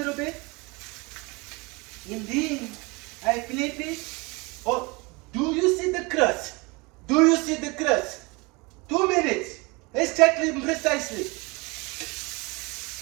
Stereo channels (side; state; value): left; quieter; 26.6 dB